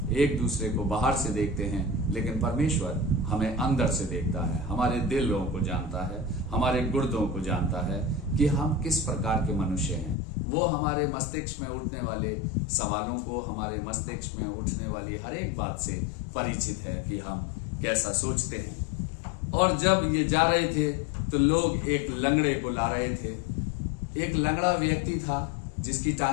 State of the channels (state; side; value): drops out; right; at 10.2 s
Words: एक दूसरे को बाहर से देखते हैं, लेकिन परमेश्वर हमें अंदर से देखता है, हमारे दिलों को जानता है, हमारे गुर्दों को जानता है कि हम किस प्रकार के मनुष्य हैं। वो हमारे मस्तिष्क में उठने वाले सवालों को, हमारे मस्तिष्क में उठने वाली हर एक बात से परिचित है कि हम कैसा सोचते हैं। और जब ये जा रहे थे तो लोग एक लंगड़े को ला रहे थे। एक लंगड़ा व्यक्ति था जिसकी